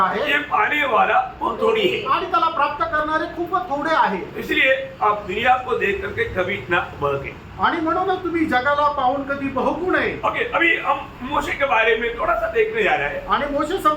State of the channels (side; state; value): both; identical; correlation 1.00